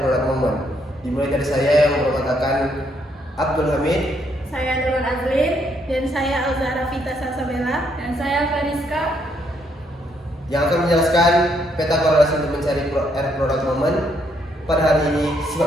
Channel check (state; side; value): normal; both; correlation 0.73